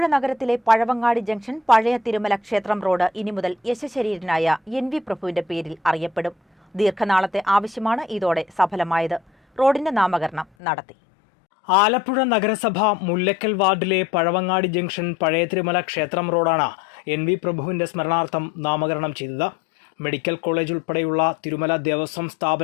നഗരത്തിലെ പഴവങ്ങാടി ജംഗ്ഷൻ പഴയ തിരുമല ക്ഷേത്രം റോഡ് ഇനി മുതൽ യശശരീരനായ NV പ്രഭുവിന്റെ പേരിൽ അറിയപ്പെടും. ദീർഘനാളത്തെ ആവശ്യമാണ് ഇതോടെ സഫലമായത്. റോഡിന്റെ നാമകരണം നടത്തി. ആലപ്പുഴ നഗരസഭ മുല്ലക്കൽ വാർഡിലെ പഴവങ്ങാടി ജംഗ്ഷൻ പഴയ തിരുമല ക്ഷേത്രം റോഡാണ് NV പ്രഭുവിന്റെ സ്മരണാർത്ഥം നാമകരണം ചെയ്തത്. മെഡിക്കൽ കോളേജ് ഉൾപ്പെടെയുള്ള തിരുമല ദേവസ്വം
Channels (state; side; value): drops out; right; at 10.5 s